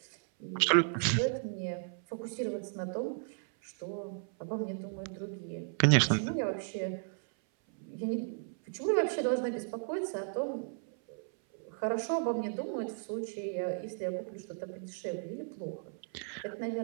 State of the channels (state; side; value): silent; left; 55 dB below the other